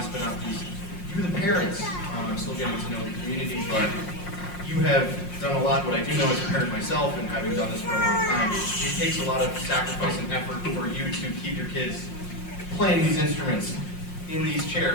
but not least, you, the parents. I'm still getting to know the community, but you have done a lot. What I do know as a parent myself, and having done this for a long time, it takes a lot of sacrifice and effort for you to keep your kids playing these instruments in these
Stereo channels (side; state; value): right; late; 5.6 ms